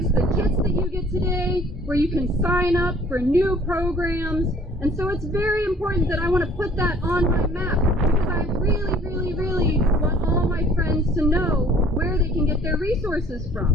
the kits that you get today, where you can sign up for new programs. And so it's very important that I want to put that on my map, because I really, really, really want all my friends to know where they can get their resources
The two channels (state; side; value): normal; both; correlation 0.54